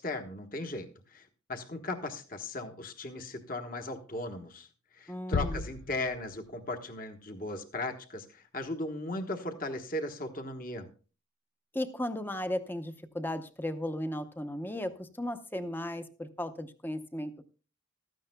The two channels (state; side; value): normal; both; correlation 0.57